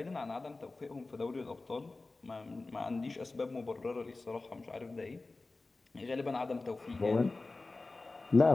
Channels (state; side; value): quieter; right; 3.4 dB